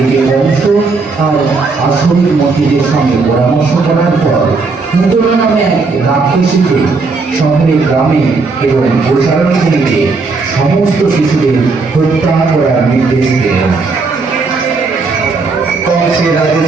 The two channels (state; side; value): quieter; left; 4.1 dB